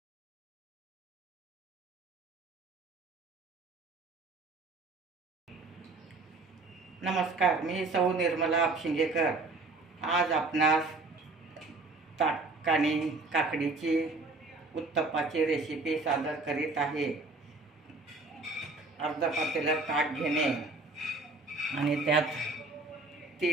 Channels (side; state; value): left; quieter; 3.4 dB